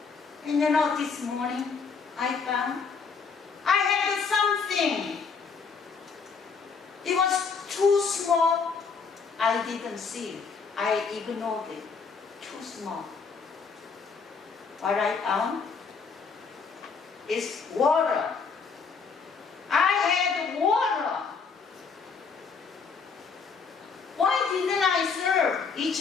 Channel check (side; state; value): right; quieter; 5.3 dB